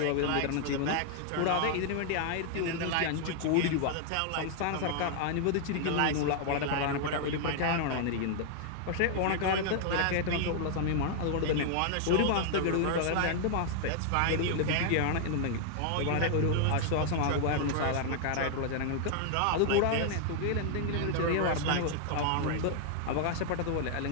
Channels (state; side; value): different; both; correlation 0.00